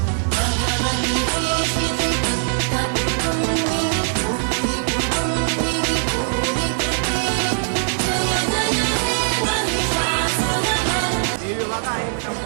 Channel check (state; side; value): silent; left; 65 dB below the other